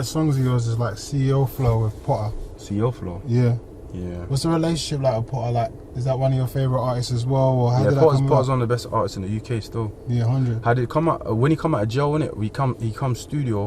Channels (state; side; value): identical; both; correlation 1.00